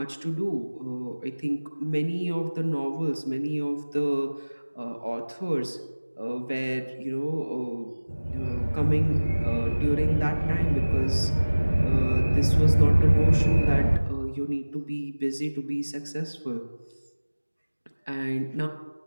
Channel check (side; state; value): both; inverted; correlation -1.00